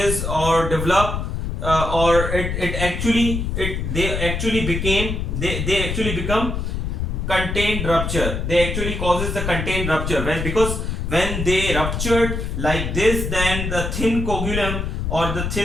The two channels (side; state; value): left; noise; rumble, 2 dB below the sound